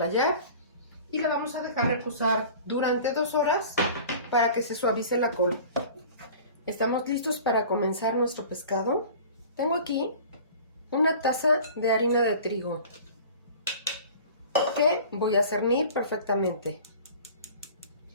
y la vamos a dejar reposar durante 2 horas para que se suavice la col. Estamos listos para comenzar nuestro pescado. Tengo aquí una taza de harina de trigo que voy a cernir perfectamente.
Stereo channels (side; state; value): both; inverted; correlation -0.43